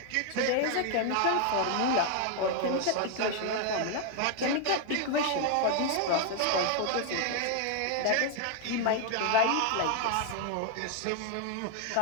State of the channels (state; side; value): different; both; correlation 0.00